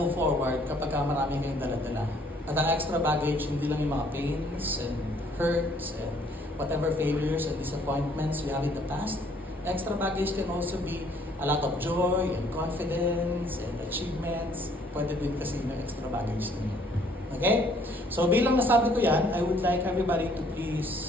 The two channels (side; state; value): both; normal; correlation 0.62